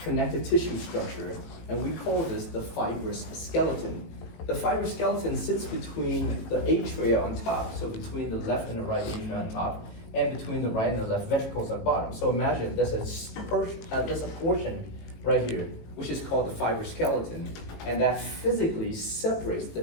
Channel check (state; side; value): late; right; 18 ms